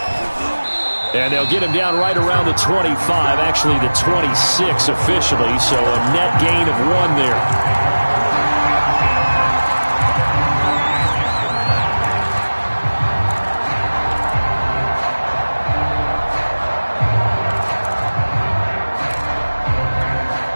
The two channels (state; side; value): inverted; both; correlation -1.00